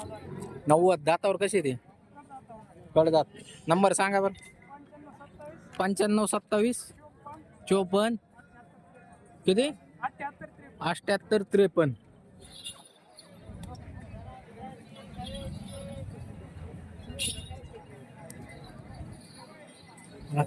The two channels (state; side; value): identical; both; correlation 1.00